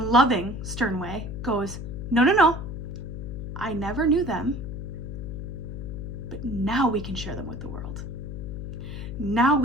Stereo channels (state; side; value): noise; left; hum, 7 dB below the sound